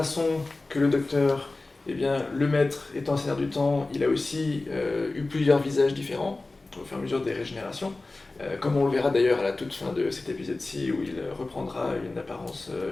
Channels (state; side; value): quieter; right; 3.2 dB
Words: que le docteur, le maître étant Seigneur du Temps, il a aussi eu plusieurs visages différents au fur et à mesure des régénérations. Comme on le verra d'ailleurs à la toute fin de cet épisode-ci, où il reprendra une apparence